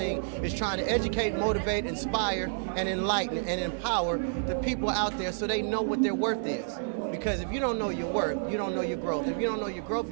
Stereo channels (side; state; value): left; silent; digital silence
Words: is trying to educate, motivate, inspire, and enlighten, and empower the people out there so they know what their worth is. Because if you don't know your worth, you don't know your growth. If you don't know your growth,